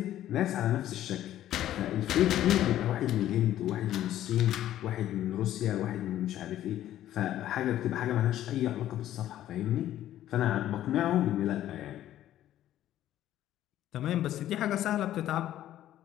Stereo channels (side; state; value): right; quieter; 12.6 dB